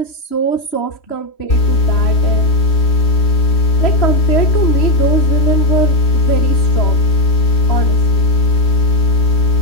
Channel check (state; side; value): late; right; 3.1 ms